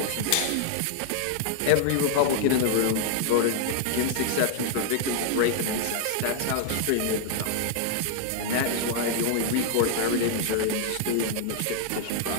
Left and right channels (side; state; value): both; different; correlation 0.00